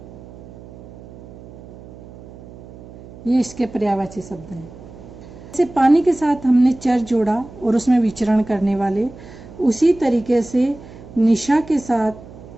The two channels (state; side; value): noise; right; hum, 18 dB below the sound